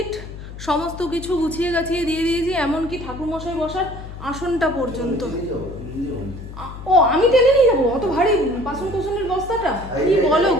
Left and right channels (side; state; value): left; noise; hum, 12 dB below the sound